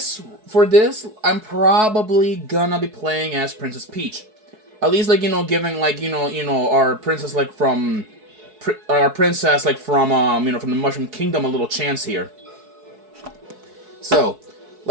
I'm probably gonna be playing as Princess Peach. At least giving our princess from the Mushroom Kingdom a little chance here. So,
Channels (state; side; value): late; left; 4.7 ms